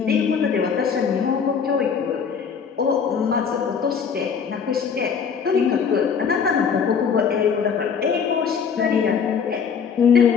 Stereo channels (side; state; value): right; quieter; 6.5 dB